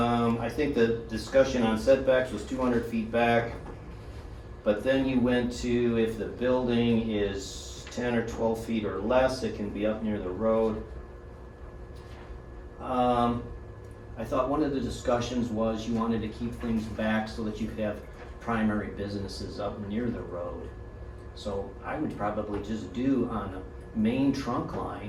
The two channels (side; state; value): both; identical; correlation 1.00